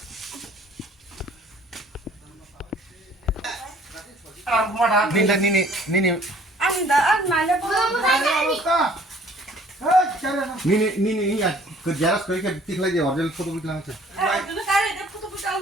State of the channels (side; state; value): both; normal; correlation 0.55